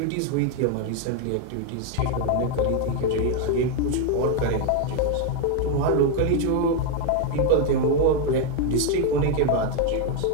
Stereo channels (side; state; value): both; different; correlation 0.01